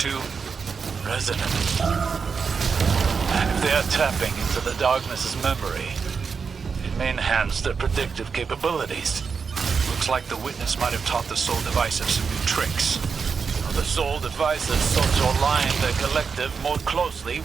Resonant. If they are tapping into the darkness's memory, it may enhance their predictive capabilities. Looks like the witness might have taught the Soul Divisive some new tricks. The Soul Divisive sought to align their collective more closely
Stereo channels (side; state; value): left; quieter; 5.6 dB